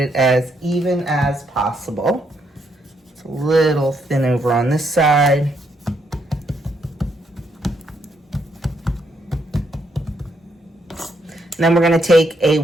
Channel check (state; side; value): normal; both; correlation 0.76